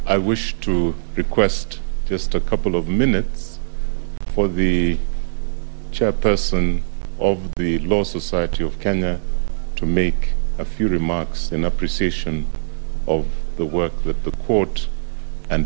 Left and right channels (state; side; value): silent; left; 65 dB below the other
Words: I wish to request just a couple of minutes for the chairperson of the Law Society of Kenya to make a few remarks in appreciation of the work that the court